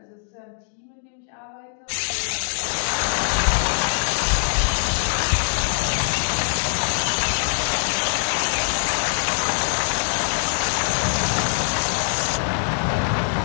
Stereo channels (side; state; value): right; silent; digital silence